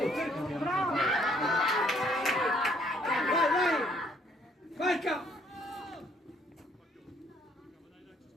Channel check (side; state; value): both; normal; correlation 0.65